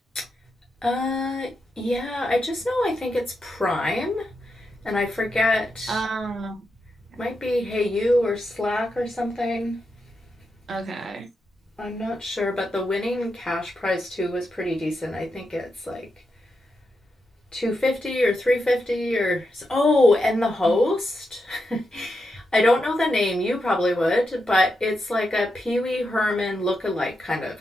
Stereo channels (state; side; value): normal; both; correlation 0.86